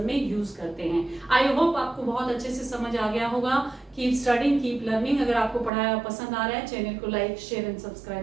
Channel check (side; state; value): left; drops out; at 5.7 s